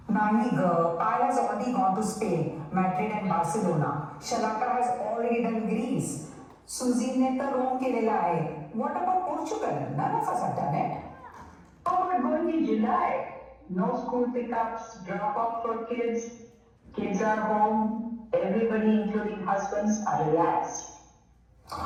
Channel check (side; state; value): both; identical; correlation 1.00